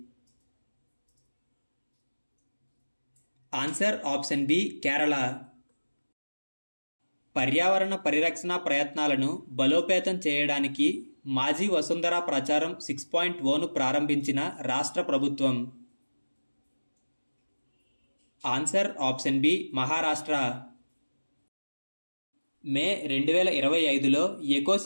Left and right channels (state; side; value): inverted; both; correlation -1.00